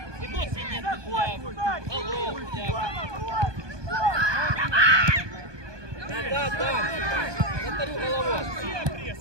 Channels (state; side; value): late; left; 1.2 ms